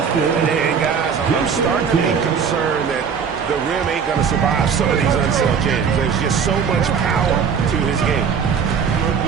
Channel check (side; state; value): left; quieter; 6.7 dB